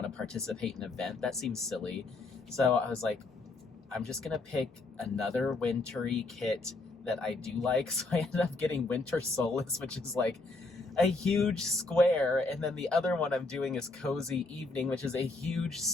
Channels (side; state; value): right; quieter; 3.3 dB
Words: to participate in an event? That seems silly. So I was like, I'm just gonna pick another wintry kit that I do like. So I ended up getting Winter Solace, which is like a huge square, and then the other one I'm doing is Cozy Evening, which is a huge